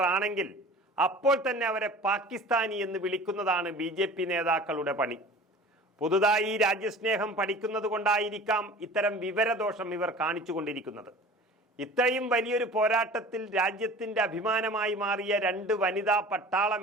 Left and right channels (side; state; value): both; normal; correlation 0.42